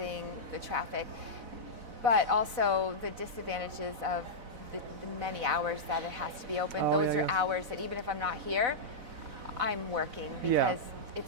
the traffic. but also the disadvantages of the many hours that it has to be open. Oh, Those yeah, are yeah. hours that even if I'm not here, I'm working because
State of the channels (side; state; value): left; late; 4.0 ms